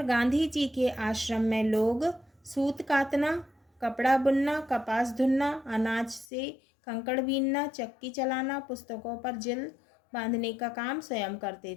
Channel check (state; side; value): drops out; right; at 6.2 s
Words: गांधी जी के आश्रम में लोग सूत कातना, कपड़ा बुनना, कपास धुनना, अनाज से कंकड़ बीनना, चक्की चलाना, पुस्तकों पर जिल बांधने का काम स्वयं